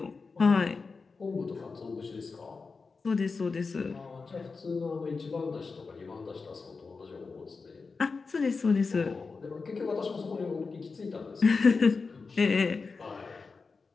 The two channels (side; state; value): right; quieter; 4.5 dB